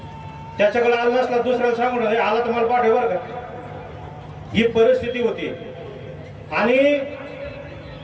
त्याच्याकडे आला नसला दुसऱ्याला सांगून आला तुम्हाला पाठव बरं का. ही परिस्थिती होती. आणि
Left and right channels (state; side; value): identical; both; correlation 1.00